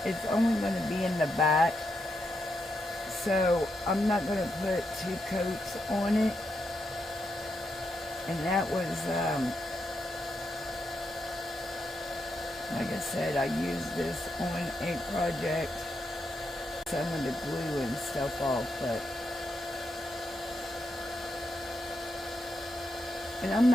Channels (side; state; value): both; normal; correlation 0.82